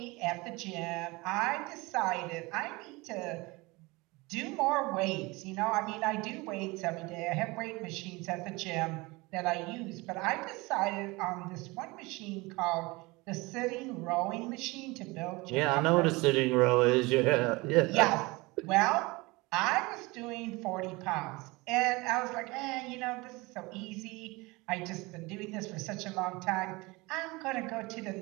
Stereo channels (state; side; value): quieter; left; 23.7 dB